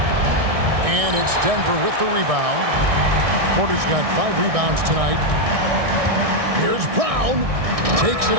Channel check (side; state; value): left; late; 1.6 ms